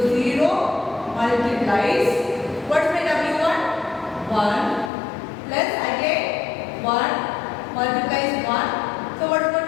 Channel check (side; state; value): right; drops out; at 4.9 s